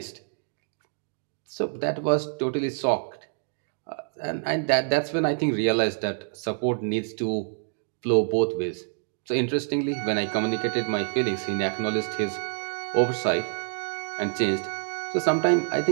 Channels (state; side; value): silent; left; digital silence